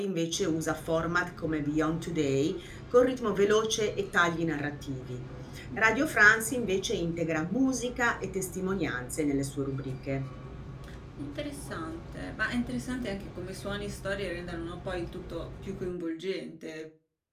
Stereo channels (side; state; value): both; identical; correlation 1.00